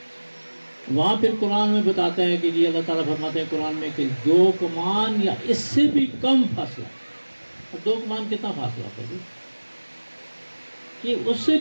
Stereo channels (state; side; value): inverted; both; correlation -1.00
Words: وہاں پھر قرآن میں بتاتا ہے کہ جی اللہ تعالیٰ فرماتے ہیں قرآن میں کہ 2 کمان یا اس سے بھی کم فاصلہ، اور 2 کمان کتنا فاصلہ تھا جی؟ کہ اس سے